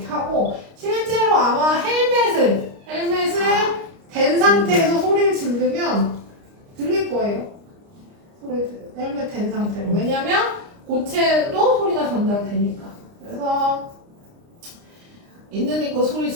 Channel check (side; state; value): left; late; 29 ms